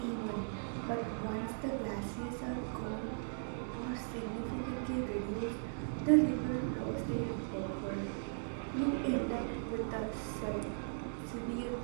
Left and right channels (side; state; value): left; silent; 52 dB below the other